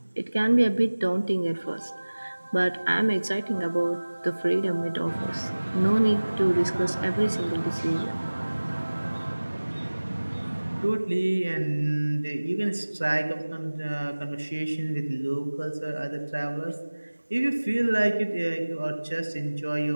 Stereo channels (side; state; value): both; inverted; correlation -1.00